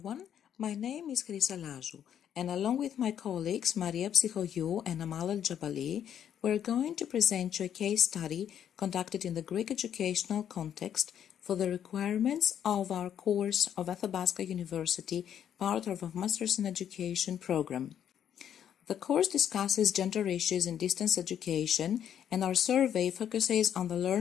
my name is Chrysoula Lazou, and along with my colleagues Maria Psychogiou and Amal El Jabali, we're going to present you a case study conducted in the Greek educational context for the requirements of our course of Athabasca University, part of a Masters in Education program. The course discusses gender issues in distance education, and our survey focuses on the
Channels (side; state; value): right; quieter; 9.4 dB